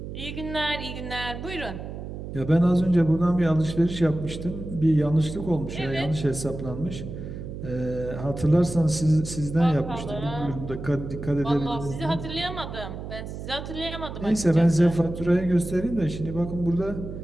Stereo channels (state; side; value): noise; right; hum, 9 dB below the sound